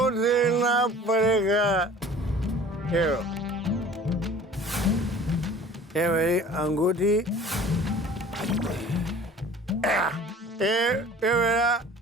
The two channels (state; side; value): normal; both; correlation 0.46